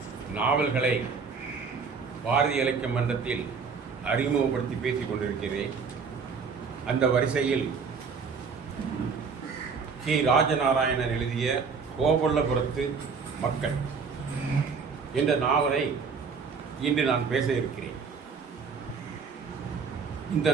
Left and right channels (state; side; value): quieter; left; 5.4 dB